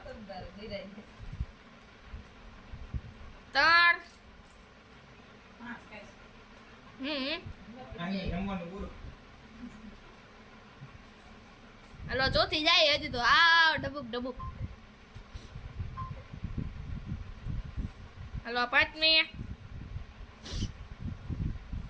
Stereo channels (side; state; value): both; identical; correlation 1.00